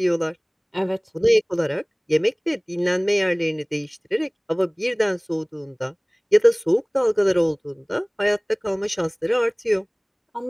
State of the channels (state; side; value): identical; both; correlation 1.00